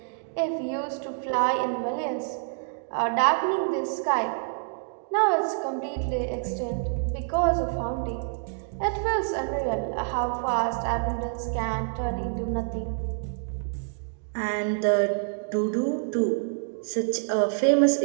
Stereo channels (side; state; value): left; silent; digital silence